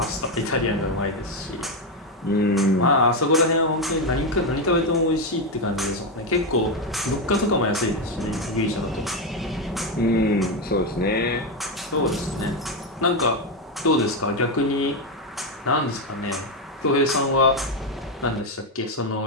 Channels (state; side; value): normal; both; correlation 0.08